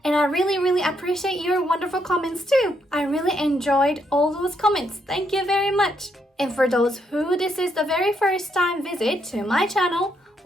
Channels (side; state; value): both; normal; correlation 0.76